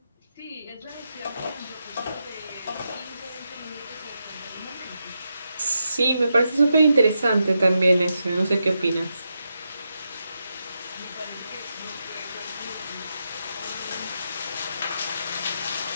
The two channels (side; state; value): both; inverted; correlation -0.86